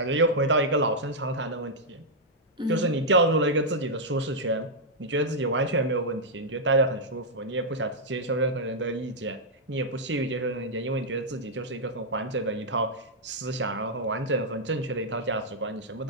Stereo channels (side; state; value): both; normal; correlation -0.06